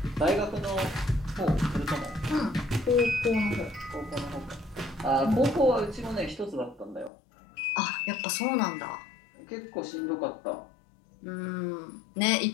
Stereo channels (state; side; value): drops out; right; at 7.1 s